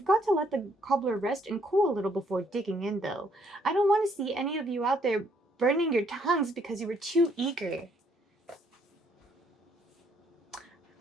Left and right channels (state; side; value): normal; both; correlation 0.68